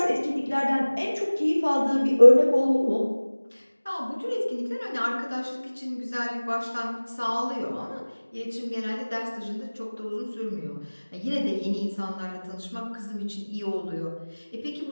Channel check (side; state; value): both; inverted; correlation -1.00